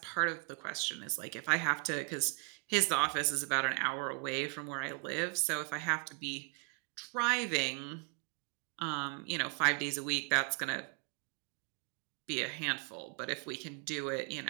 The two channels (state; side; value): quieter; left; 37.2 dB